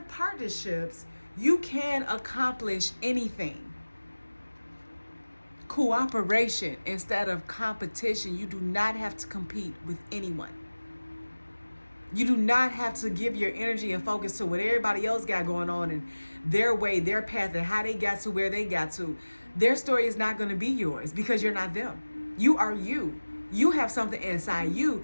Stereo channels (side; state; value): both; inverted; correlation -1.00